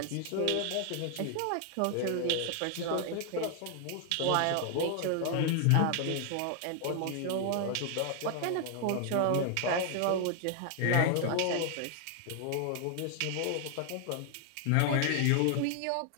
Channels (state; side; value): different; both; correlation 0.00